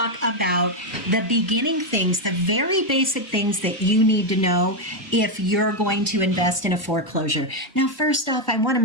about the beginning things, the very basic things that you need to know if you're going to invest in a foreclosure. Now, first off, I want to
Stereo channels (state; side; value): normal; both; correlation 0.04